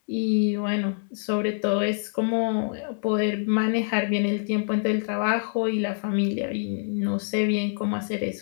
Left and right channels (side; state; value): right; silent; digital silence